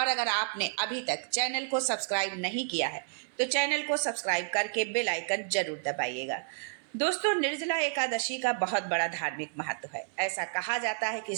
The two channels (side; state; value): left; silent; 57 dB below the other